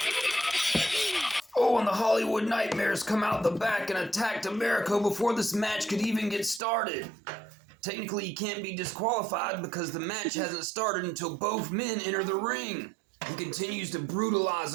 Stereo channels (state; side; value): drops out; left; at 6.6 s